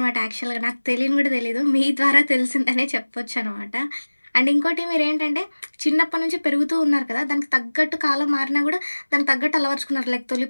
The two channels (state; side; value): inverted; both; correlation -1.00